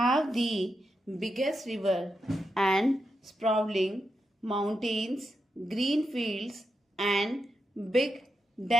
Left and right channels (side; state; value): both; normal; correlation 0.86